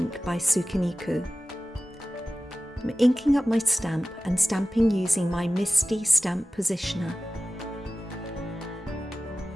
by Sukiniku. I'm inking up my stamp and stamping using my Misty stamp positioner.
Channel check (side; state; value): both; normal; correlation 0.96